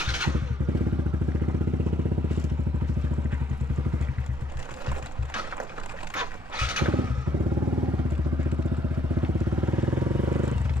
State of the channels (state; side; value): normal; both; correlation 0.69